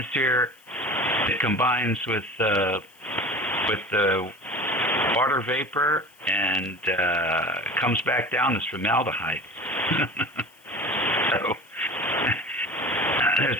it combines with the water vapor and comes back down as formaldehyde. So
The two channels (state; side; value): noise; left; hiss, 29 dB below the sound